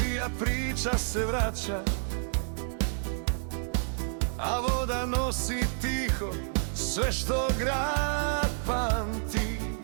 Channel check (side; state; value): left; silent; digital silence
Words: priča se vraća, a voda nosi tiho sve što grad pamti.